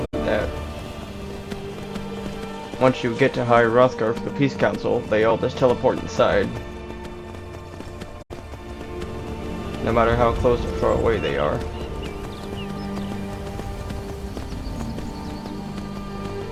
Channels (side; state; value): both; identical; correlation 1.00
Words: that once you get to High Hrothgar for the Peace Council, they all just teleport inside. No matter how close or far away they are.